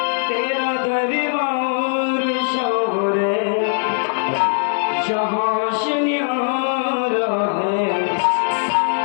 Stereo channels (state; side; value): silent; right; 58 dB below the other